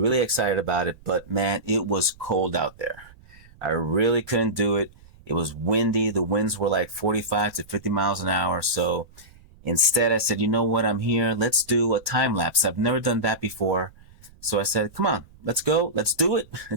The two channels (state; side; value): noise; right; rumble, 24 dB below the sound